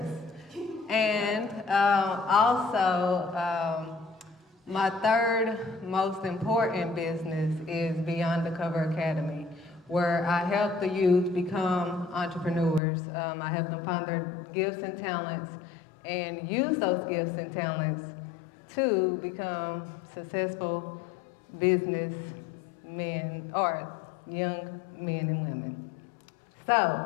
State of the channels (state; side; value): drops out; right; at 12.8 s